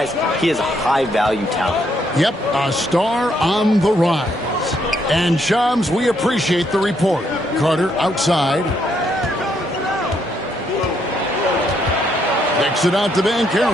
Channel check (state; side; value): normal; both; correlation 0.74